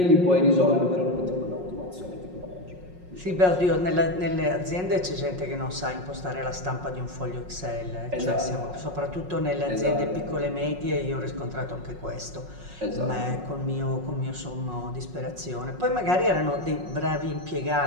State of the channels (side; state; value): left; late; 5.5 ms